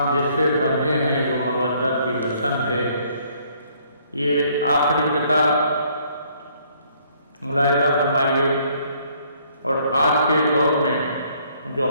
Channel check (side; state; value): both; inverted; correlation -0.64